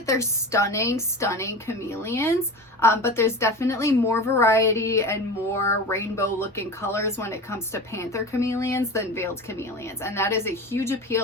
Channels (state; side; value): normal; both; correlation 0.31